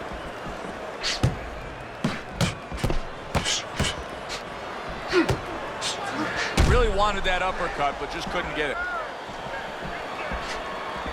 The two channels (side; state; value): both; identical; correlation 1.00